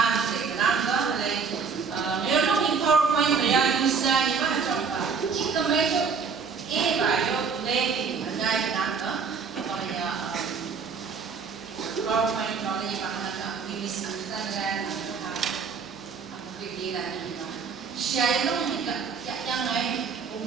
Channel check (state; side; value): quieter; left; 5.6 dB